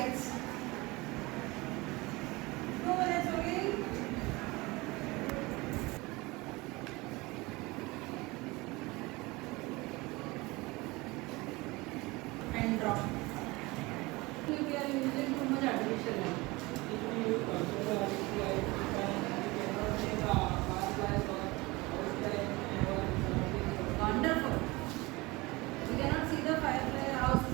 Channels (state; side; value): quieter; left; 22.8 dB